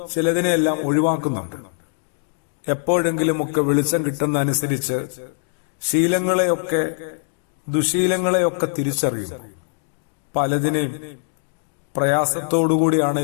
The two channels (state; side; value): silent; right; digital silence